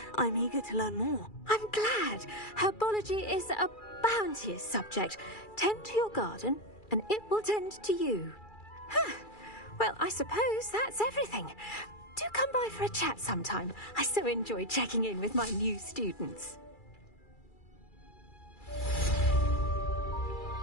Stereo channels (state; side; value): late; right; 2.3 ms